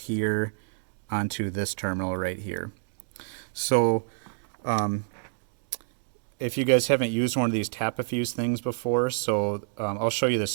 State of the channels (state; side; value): silent; left; digital silence